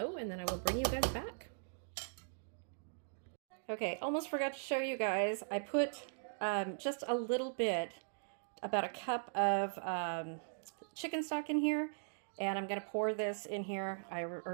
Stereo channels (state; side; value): silent; left; digital silence